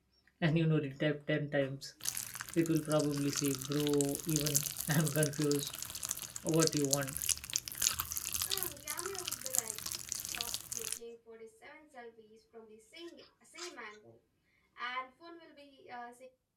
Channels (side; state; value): both; identical; correlation 1.00